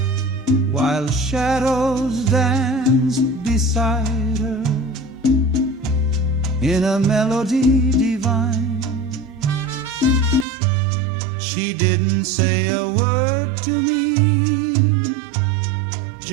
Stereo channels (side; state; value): left; drops out; at 10.5 s